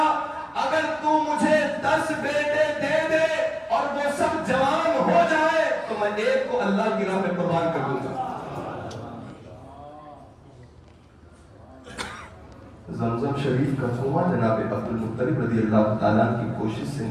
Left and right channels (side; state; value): both; identical; correlation 1.00